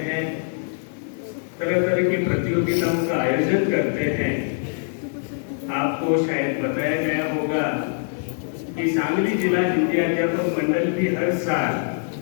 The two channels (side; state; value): right; silent; 63 dB below the other